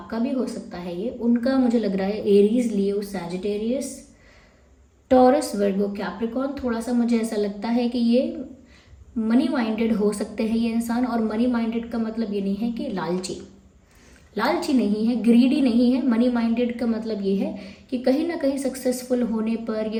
भी हो सकता है ये। उनका मुझे लग रहा है एरीज, लियो, सैजिटेरियस, टॉरस, वर्गो, कैप्रिकॉर्न। थोड़ा सा मुझे ऐसा लगता है कि ये मनी माइंडेड हो सकते हैं ये इंसान। और मनी माइंडेड का मतलब ये नहीं है कि लालची, लालची नहीं है, ग्रीडी नहीं है। मनी माइंडेड का मतलब ये है कि कहीं ना कहीं सक्सेसफुल होने पर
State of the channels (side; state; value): both; identical; correlation 1.00